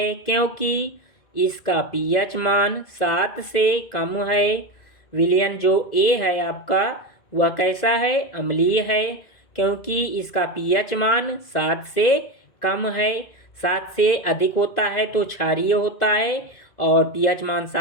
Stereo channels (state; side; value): late; right; 2.0 ms